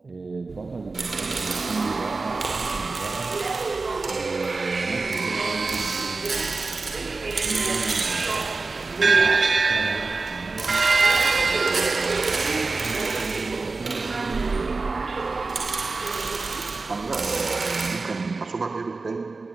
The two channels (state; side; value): quieter; left; 3.8 dB